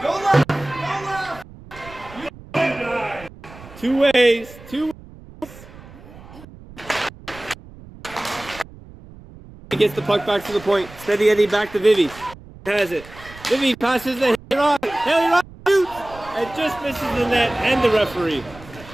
two ways. He gets the puck back to the point. Steady Eddie back to Vivi. Has it. Vivi passes the Haley Ross. Haley Ross shoots and just misses the net and the referee.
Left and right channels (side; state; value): right; noise; rumble, 19 dB below the sound